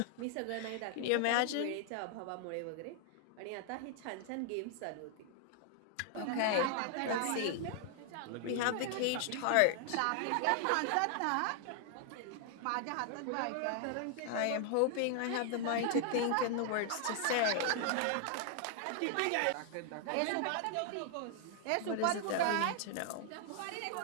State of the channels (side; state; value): both; different; correlation 0.00